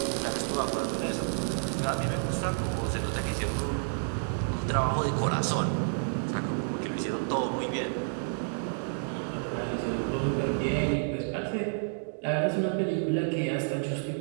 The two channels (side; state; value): left; silent; digital silence